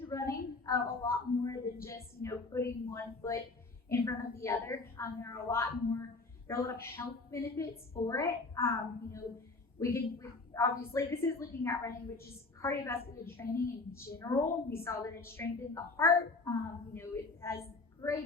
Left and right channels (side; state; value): right; quieter; 3.6 dB